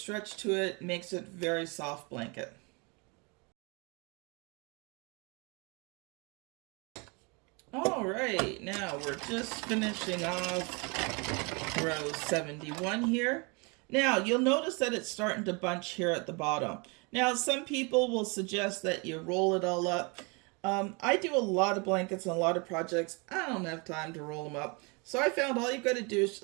to it. Makes it a very soft blanket. All right, now we're just finishing off row 71 here. Now you'll notice that it's starting to bunch here at the bottom. Now some people will suggest that you roll it all up. I do a lot of blankets and a lot of projects. I don't have time to roll them up. So I found all you've got to do is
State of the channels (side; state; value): left; quieter; 30.8 dB